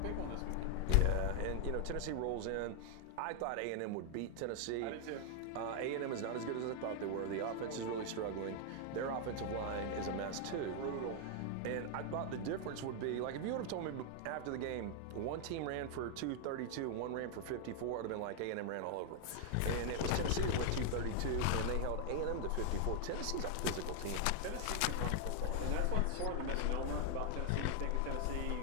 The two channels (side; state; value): both; different; correlation 0.00